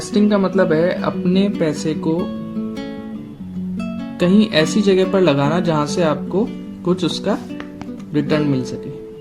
का मतलब है अपने पैसे को कहीं ऐसी जगह पर लगाना जहां से आपको कुछ उसका रिटर्न मिल सके।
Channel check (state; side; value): identical; both; correlation 1.00